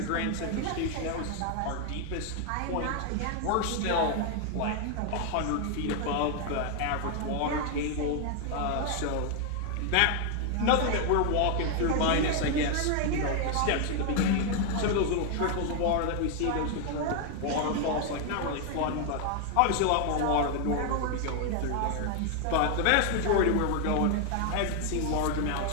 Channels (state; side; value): different; both; correlation 0.00